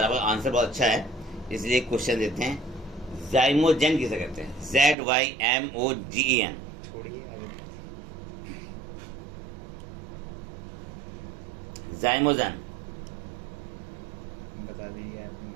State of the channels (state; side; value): drops out; left; at 5.0 s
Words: अब आंसर बहुत अच्छा है, इसलिए क्वेश्चन देते हैं। जाइमोजेन किसे कहते हैं? ZYMOGEN। छोड़िए आगे। जाइमोजेन बता दीजिए आपने।